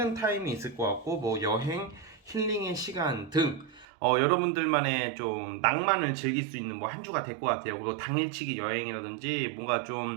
타임이 있을 것 같고 뭐 여행, 힐링의 시간 등 여러분들만의 좀 낭만을 즐길 수 있는 뭐 한 주가 될 것 같아요. 그리고 당일치기 여행이라든지 뭔가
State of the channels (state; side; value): drops out; left; at 3.9 s